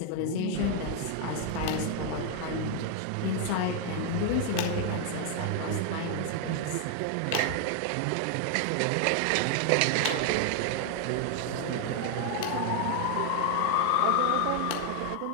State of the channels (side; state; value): both; different; correlation 0.00